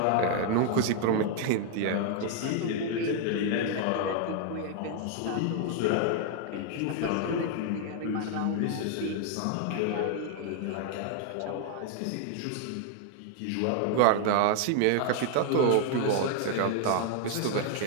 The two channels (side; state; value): both; different; correlation 0.00